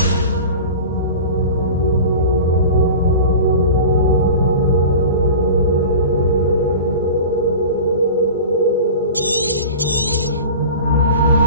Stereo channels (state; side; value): inverted; both; correlation -0.35